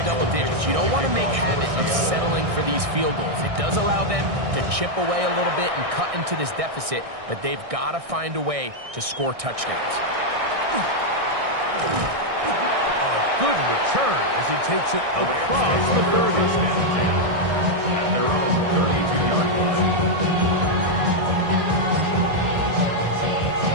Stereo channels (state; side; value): late; left; 1.6 ms